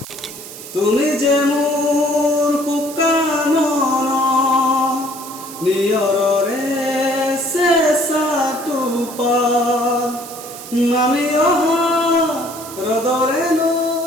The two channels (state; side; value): noise; right; hiss, 13 dB below the sound